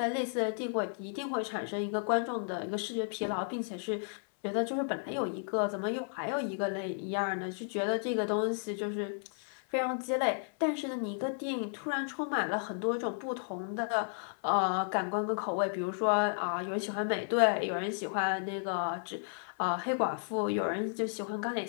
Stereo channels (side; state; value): right; silent; 56 dB below the other